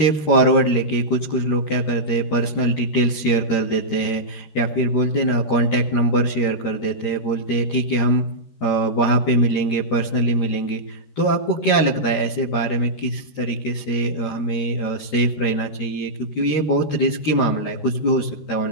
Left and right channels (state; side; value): late; right; 13 ms